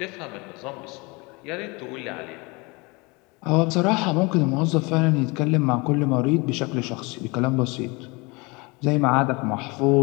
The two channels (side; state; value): right; quieter; 26.7 dB